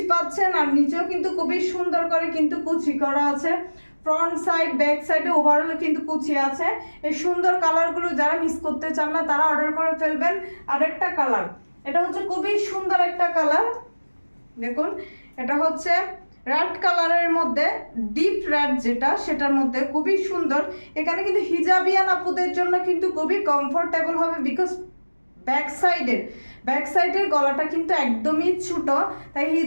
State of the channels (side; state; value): both; inverted; correlation -1.00